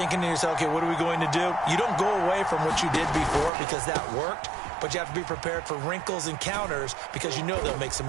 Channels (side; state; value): left; drops out; at 3.5 s